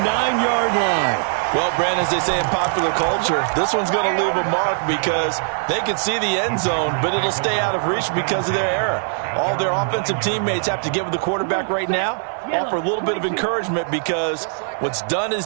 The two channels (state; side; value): silent; left; digital silence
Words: 9-yard line. Well, Brandon, as they say in popular culture, this one's going to leave a mark because they can see the end zone, but it'll stay out of reach because of their error. All their offensive teammates have to get with the quarterback right now, offer a little bit of encouragement because what's done is